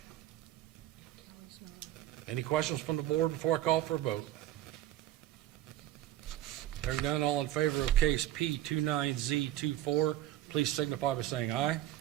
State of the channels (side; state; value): left; quieter; 13.7 dB